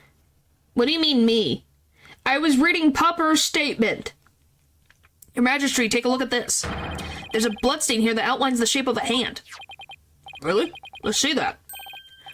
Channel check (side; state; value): both; identical; correlation 1.00